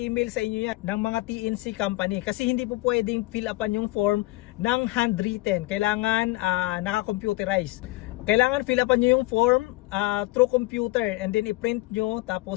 sa inyo yan ng mga TNC company. Kasi hindi po pwedeng fill upan yung form ng handwritten. Kailangan naka-computerize. Kailangan fill upan nyo yung form through computer and then i-print nyo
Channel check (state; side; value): quieter; right; 20.3 dB